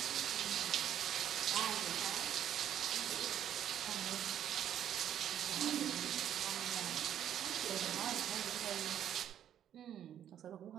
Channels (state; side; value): quieter; left; 10.3 dB